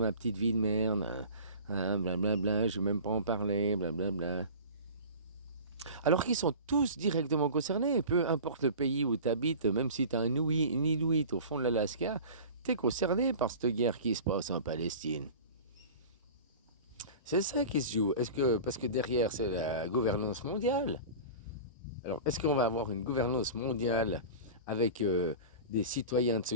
petite vie de merde, blablabla, je veux même pas en parler, blablabla. Alors qu'ils sont tous directement concernés, peu importe le pays où tu habites, même si tu as un Inuit au fond de l'Alaska, tu es concerné par cette guerre qui se passe en Palestine. C'est ça qui se joue. Est-ce que, parce que derrière, c'est la gouvernance mondiale. Alors, est-ce qu'on va avoir une gouvernance mondiale avec des citoyens de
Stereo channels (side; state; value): both; inverted; correlation -0.37